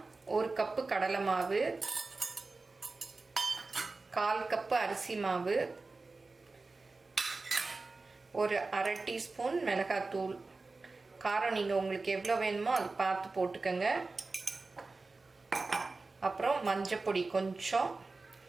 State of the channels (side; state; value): left; quieter; 3.7 dB